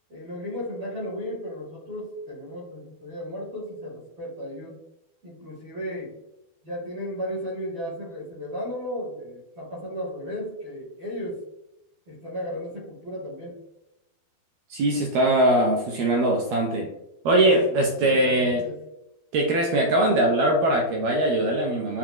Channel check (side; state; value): left; late; 12 ms